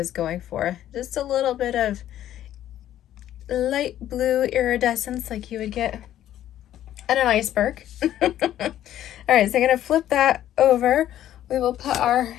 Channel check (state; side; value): quieter; right; 12.1 dB